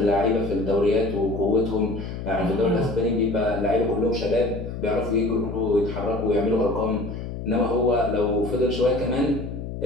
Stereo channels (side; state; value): left; noise; hum, 7 dB below the sound